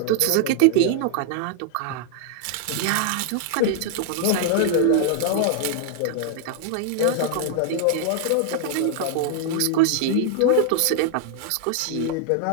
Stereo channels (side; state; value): both; different; correlation 0.00